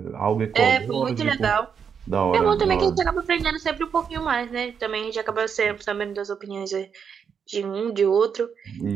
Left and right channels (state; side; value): quieter; left; 6.9 dB